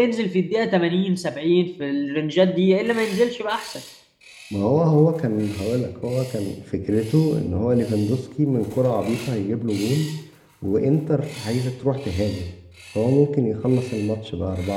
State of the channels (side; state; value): both; identical; correlation 1.00